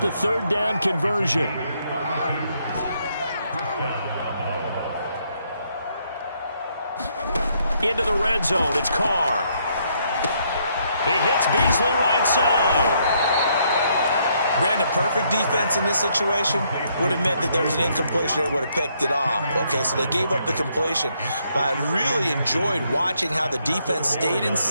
the 3rd down conversion. Into the red zone. It's Carr. He hits Beasley right side. Brandon, perfect defense in this situation would have meant that there was an incompletion. They would have picked it off. Okay, so they gave up the completion. But I really enjoyed watching how the defense stayed in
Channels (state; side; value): inverted; both; correlation -0.72